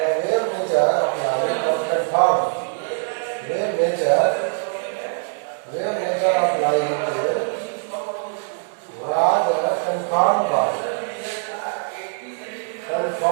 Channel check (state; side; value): silent; left; 64 dB below the other